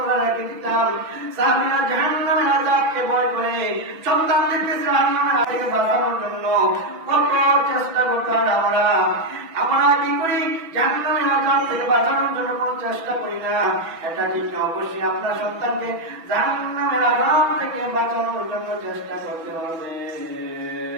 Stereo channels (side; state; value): left; late; 6.0 ms